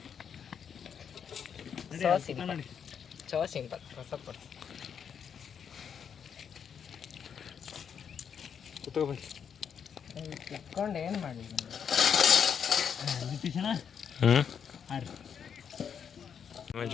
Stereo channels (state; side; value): quieter; right; 7.5 dB